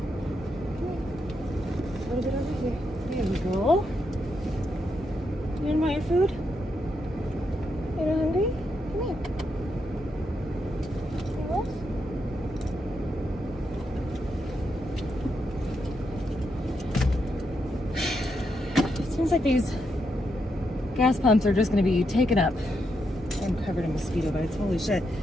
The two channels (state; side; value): normal; both; correlation 0.82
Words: A little bit over here. There we go. You didn't want your food? You're not hungry? Come here. It seems like these gas pumps are just going to be taken up. I'm covered in mosquito bites. Holy shit.